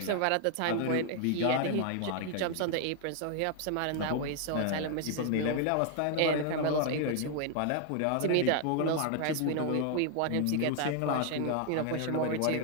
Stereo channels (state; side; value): different; both; correlation 0.00